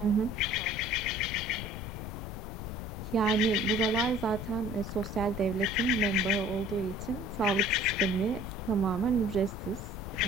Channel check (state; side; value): noise; left; rumble, 8 dB below the sound